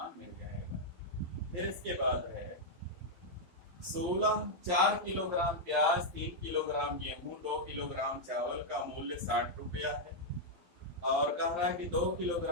मिल जाएगा। फिर इसके बाद है 4 किलोग्राम प्याज, 3 किलोग्राम गेहूं, 2 किलोग्राम चावल का मूल्य 60 रुपया है। और कह रहा है कि 2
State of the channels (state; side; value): late; left; 11 ms